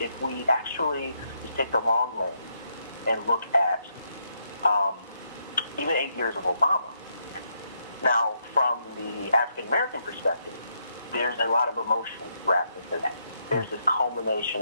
we actually just take the long lens and look at even 8 years of Obama, now from the African American perspective, there's a lot of emotion wrapped into that. There's this culmination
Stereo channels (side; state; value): both; inverted; correlation -0.77